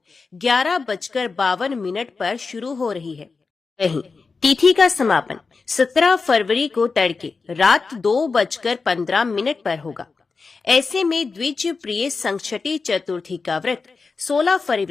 11:52 पर शुरू हो रही है। वहीं तिथि का समापन 17 फरवरी को तड़के रात 2:15 पर होगा। ऐसे में द्विज प्रिय संकष्टी चतुर्थी का व्रत 16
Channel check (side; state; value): right; quieter; 4.5 dB